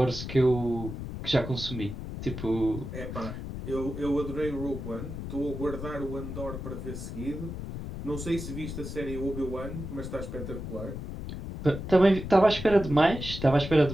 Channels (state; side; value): noise; left; rumble, 7 dB below the sound